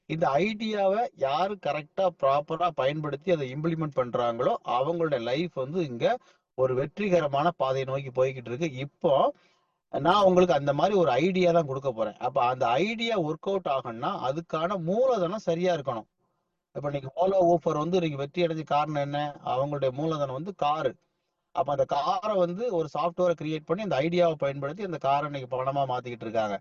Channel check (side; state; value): both; identical; correlation 1.00